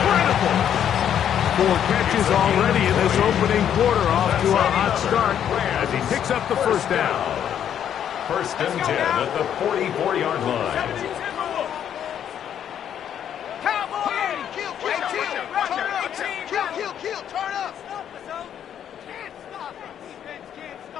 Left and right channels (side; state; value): right; quieter; 9.5 dB